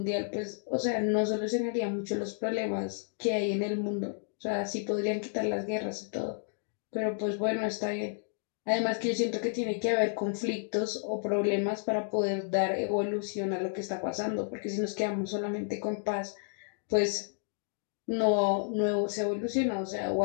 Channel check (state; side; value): silent; right; digital silence